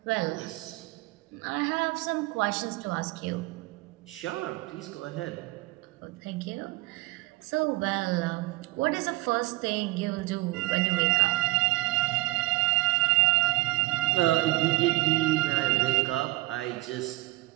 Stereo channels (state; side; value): quieter; left; 19.5 dB